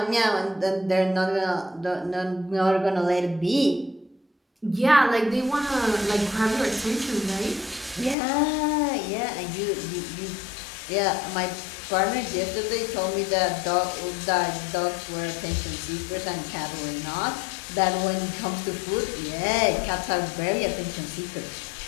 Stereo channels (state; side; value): drops out; right; at 8.2 s